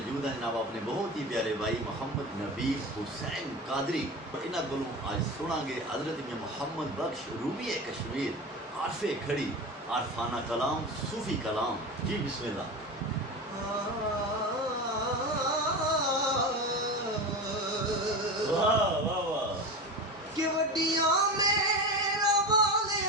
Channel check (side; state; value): both; normal; correlation 0.26